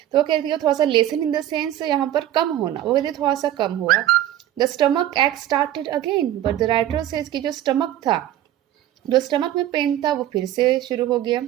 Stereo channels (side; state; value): left; quieter; 12.6 dB